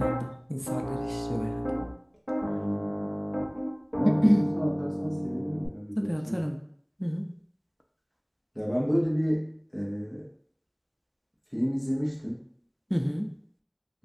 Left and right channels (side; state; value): both; identical; correlation 1.00